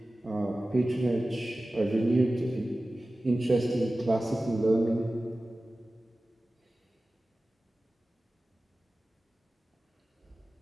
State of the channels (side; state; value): both; normal; correlation 0.96